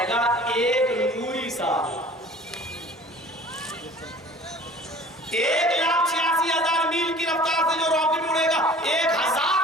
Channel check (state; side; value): normal; both; correlation 0.46